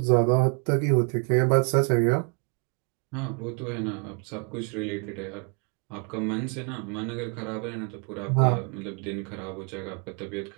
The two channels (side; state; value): left; quieter; 36.1 dB